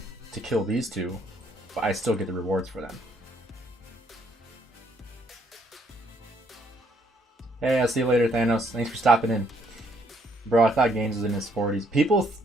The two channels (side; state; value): both; normal; correlation 0.69